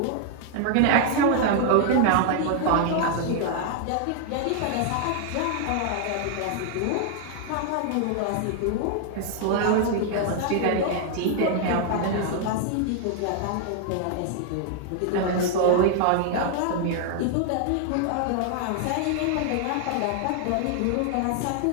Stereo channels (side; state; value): both; different; correlation 0.00